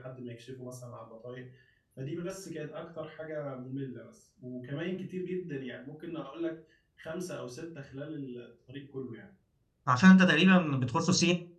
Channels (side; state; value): both; identical; correlation 1.00